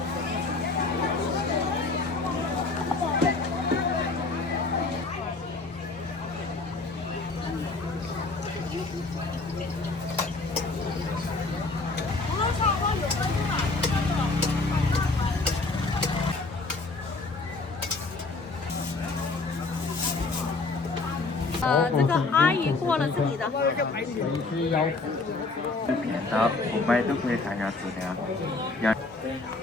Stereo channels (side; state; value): right; quieter; 3.6 dB